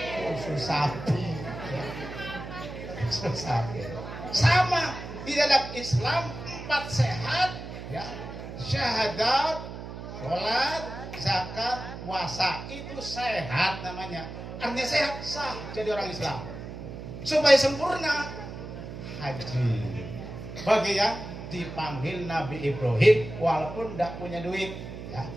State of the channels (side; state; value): right; noise; hum, 10 dB below the sound